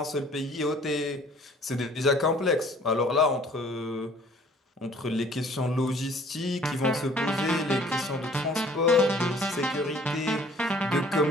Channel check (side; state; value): both; normal; correlation 0.55